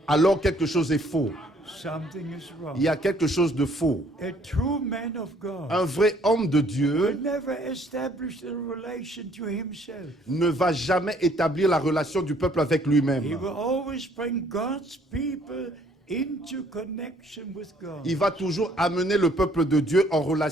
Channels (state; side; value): normal; both; correlation 0.62